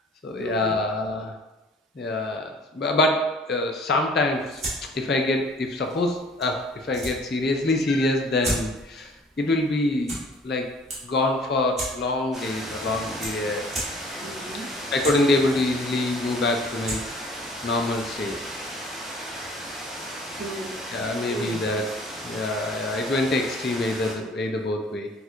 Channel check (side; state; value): both; normal; correlation 0.53